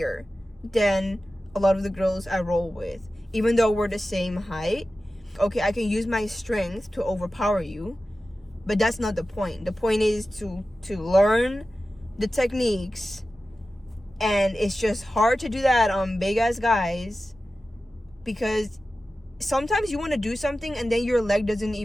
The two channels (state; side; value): normal; both; correlation 0.94